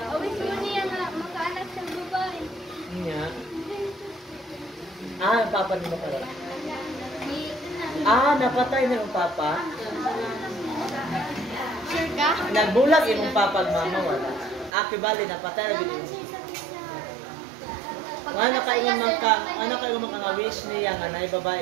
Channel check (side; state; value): left; drops out; at 14.7 s